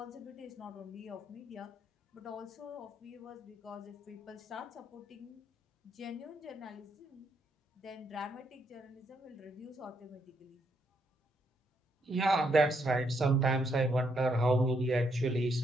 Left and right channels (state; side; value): normal; both; correlation 0.76